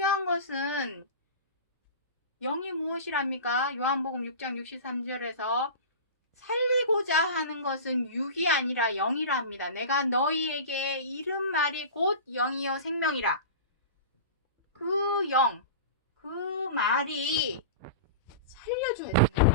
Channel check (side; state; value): both; inverted; correlation -0.31